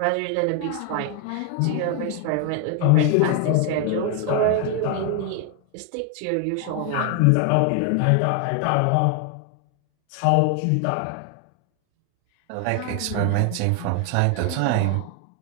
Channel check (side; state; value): both; different; correlation 0.00